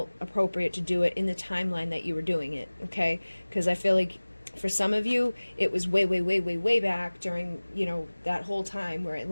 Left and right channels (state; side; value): inverted; both; correlation -1.00